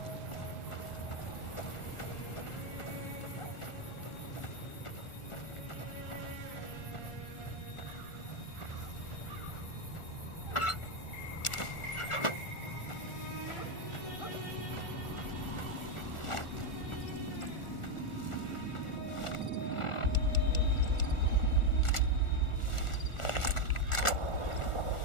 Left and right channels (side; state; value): right; late; 1.4 ms